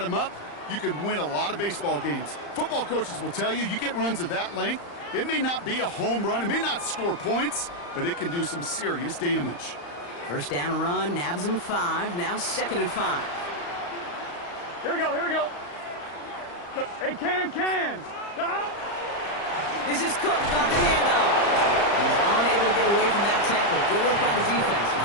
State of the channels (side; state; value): right; late; 35 ms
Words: them up, you can win a lot of baseball games. Football coaches will tell you, you get runs of that length, it may not be a home run, it may not score points, but it can do some serious damage. First down run, nabs him 5. Now 2nd and 5. Here we go. Here we go. Hey, can. Stop. This is Cook on the handoff. He's unable to get away from that tackle. Good work by the defense.